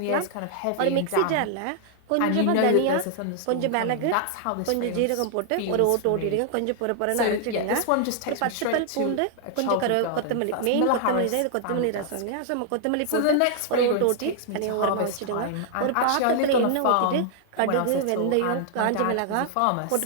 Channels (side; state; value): both; different; correlation -0.01